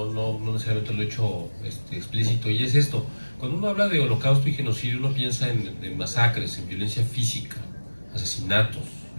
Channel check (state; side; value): inverted; both; correlation -1.00